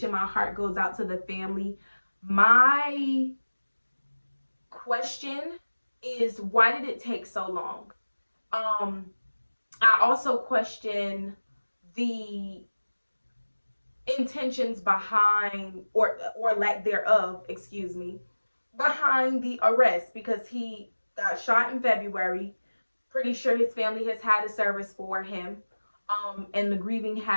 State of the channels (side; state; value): both; inverted; correlation -1.00